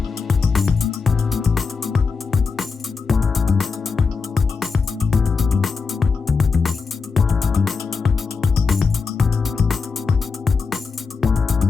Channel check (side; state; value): right; quieter; 4.9 dB